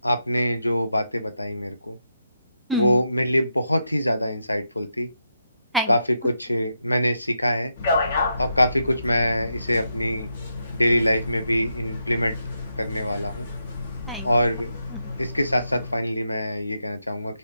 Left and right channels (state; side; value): inverted; both; correlation -0.84